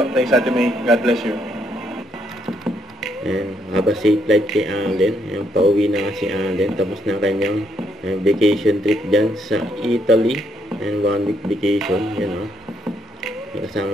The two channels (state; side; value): normal; both; correlation 0.73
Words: Thanks Ate May. God bless you. And have a safe flight kay Alden. Ayan, pauwi na nga si Alden. Tapos na kanyang vacation trip dyan sa Italy. And 1-week vacation. Yan o.